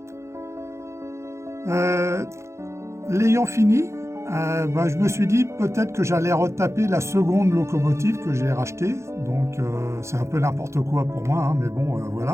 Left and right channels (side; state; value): left; late; 0.14 ms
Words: L'ayant fini, je me suis dit peut-être que j'allais retaper la seconde locomotive que j'ai rachetée, donc c'est un peu n'importe quoi pour moi, mais bon,